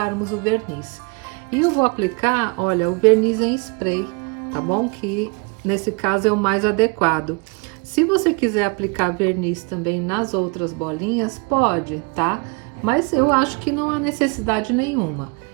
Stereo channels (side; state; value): left; quieter; 30.6 dB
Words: o verniz. E eu vou aplicar, olha, o verniz em spray, tá bom? Que nesse caso é o mais adequado. Se você quiser aplicar verniz também nas outras bolinhas, pode, tá? Mas eu acho que não há necessidade nenhuma.